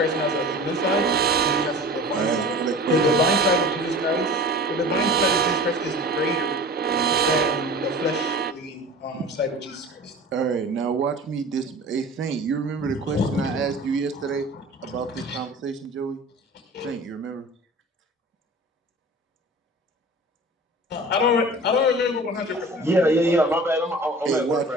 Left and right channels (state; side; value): normal; both; correlation 0.39